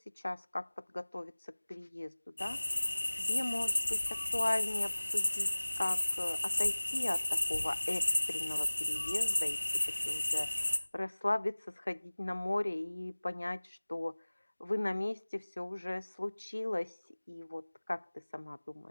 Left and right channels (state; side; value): inverted; both; correlation -1.00